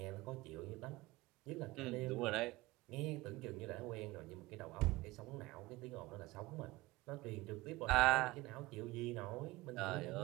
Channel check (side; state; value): left; quieter; 20.2 dB